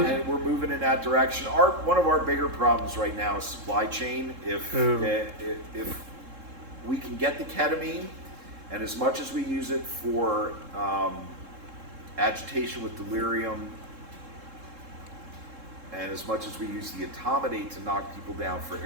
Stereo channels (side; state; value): left; late; 3.7 ms